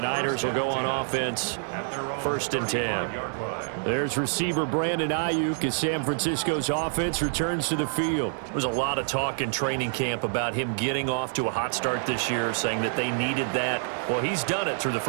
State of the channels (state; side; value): silent; left; digital silence